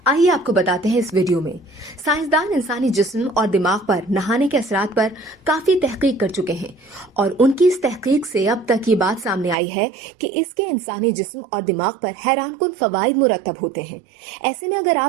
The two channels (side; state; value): left; drops out; at 9.6 s